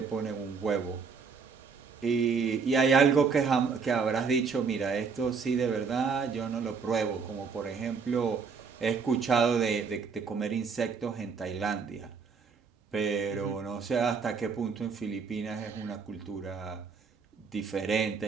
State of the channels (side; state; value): left; quieter; 5.5 dB